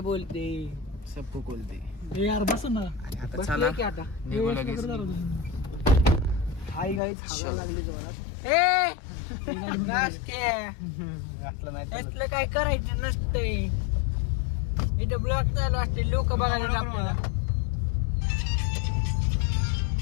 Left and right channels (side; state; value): right; drops out; at 7.0 s